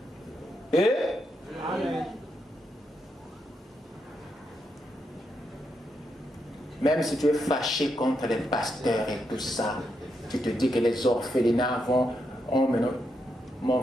Et Amen. même si tu es fâché contre les pasteurs et tout ça, tu te dis que les orphelinats vont... Oh, mais non. Mon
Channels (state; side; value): normal; both; correlation 0.82